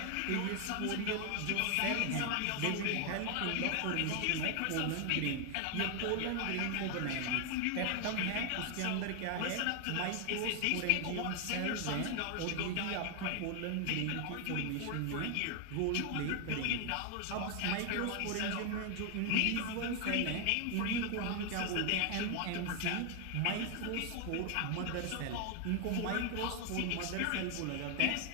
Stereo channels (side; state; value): both; different; correlation 0.01